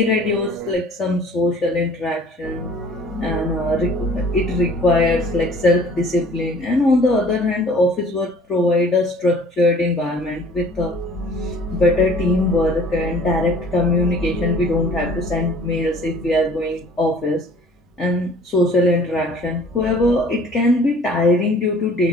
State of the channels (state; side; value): normal; both; correlation 0.51